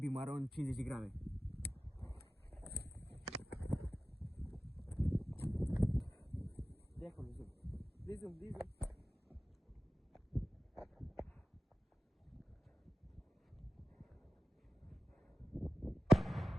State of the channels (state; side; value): normal; both; correlation 0.95